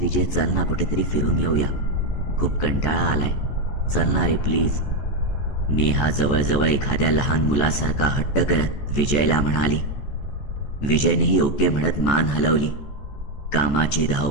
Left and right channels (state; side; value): late; right; 14 ms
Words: चल ना कुठेतरी फिरून येऊया, खूप कंटाळा आलाय, चल ना रे प्लीज. नेहा जवळजवळ एखाद्या लहान मुलासारखा हट्ट करत विजयला म्हणाली. विजयनेही ओके म्हणत मान हलवली. कामाची